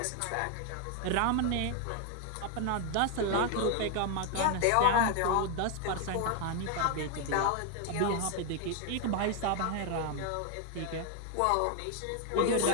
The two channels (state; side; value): different; both; correlation 0.01